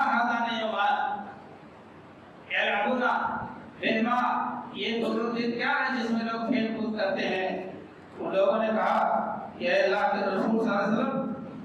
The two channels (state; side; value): identical; both; correlation 1.00